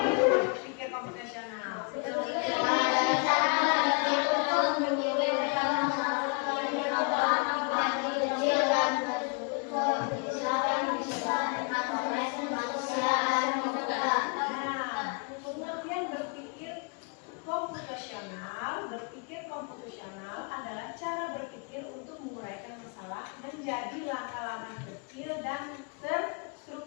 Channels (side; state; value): right; quieter; 34.1 dB